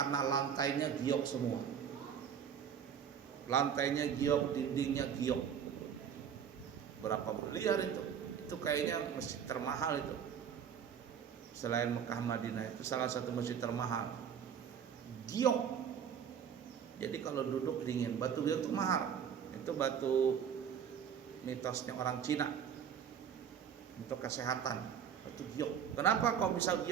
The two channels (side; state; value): left; quieter; 8.1 dB